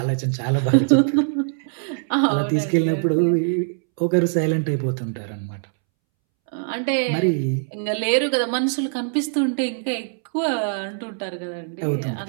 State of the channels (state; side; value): silent; left; 64 dB below the other